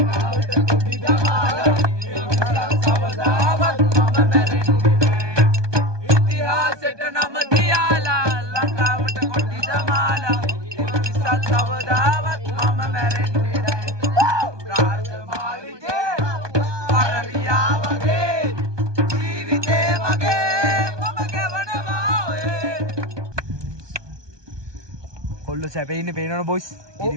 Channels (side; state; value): left; late; 1.2 ms